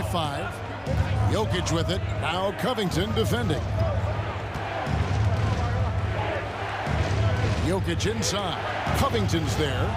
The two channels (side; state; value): both; identical; correlation 1.00